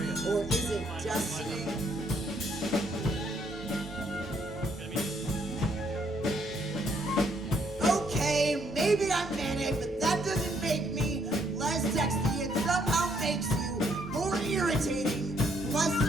or is it destiny? Okay, maybe I'm manic, but that doesn't make me less sexy. It somehow makes you more irritating. Plus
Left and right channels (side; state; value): both; normal; correlation 0.70